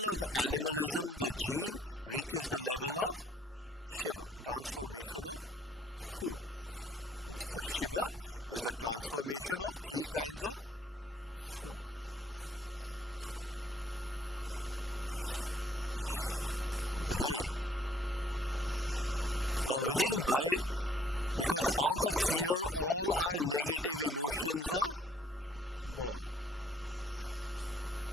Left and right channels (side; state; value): both; normal; correlation 0.63